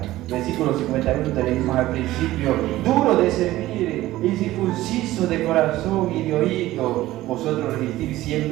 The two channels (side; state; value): left; quieter; 16.1 dB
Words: Versículo 51 tenemos al principio, duro de servir, incircunciso de corazón y de oído, vosotros resistir